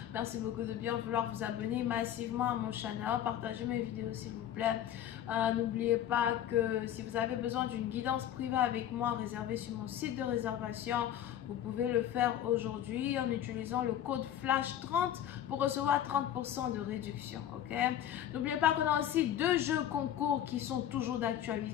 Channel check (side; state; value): right; quieter; 10.9 dB